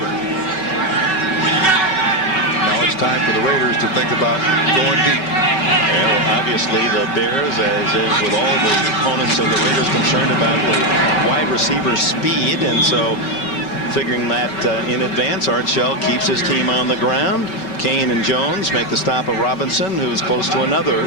Now it's time for the Raiders to think about going deep. Well, obviously the Bears, as is with all the opponents of the Raiders, concerned about the wide receiver speed, and so figuring that in advance, Art Shell keeps his team on the ground. Kane and Jones make the stop of Robinson, who is close to another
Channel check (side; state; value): right; late; 5.3 ms